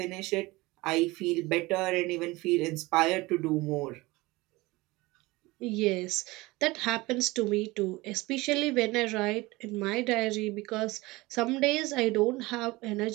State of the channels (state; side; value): quieter; left; 21.5 dB